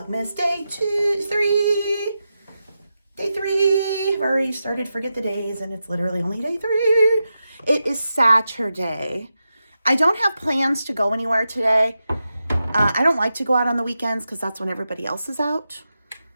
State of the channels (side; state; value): both; inverted; correlation -0.90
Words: Day 3. Day 3. I've already started to forget the days and it's literally only day 3. It is Saturday. I don't have plans to go anywhere today. I don't like to go out on the weekends because that's when everybody else is out,